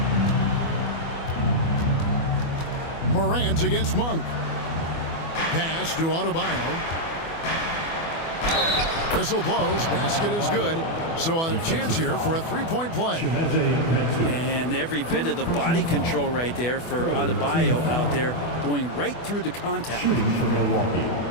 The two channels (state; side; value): late; right; 24 ms